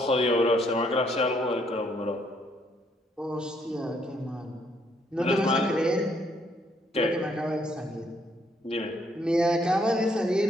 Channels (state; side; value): normal; both; correlation 0.70